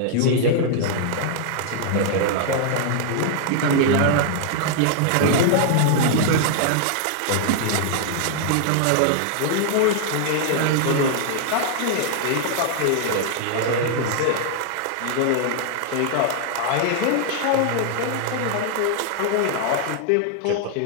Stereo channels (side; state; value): both; different; correlation 0.00